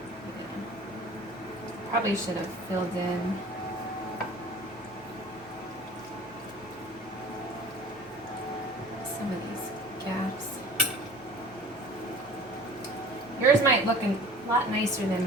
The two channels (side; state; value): both; normal; correlation 0.44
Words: Yeah. Probably should have filled in some of these gaps. Yours might look a lot nicer than